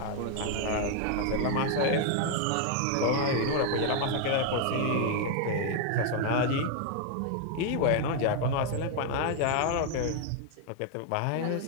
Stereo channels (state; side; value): different; both; correlation 0.00